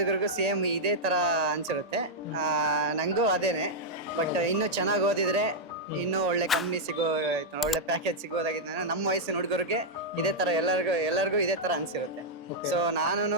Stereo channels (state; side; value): normal; both; correlation -0.05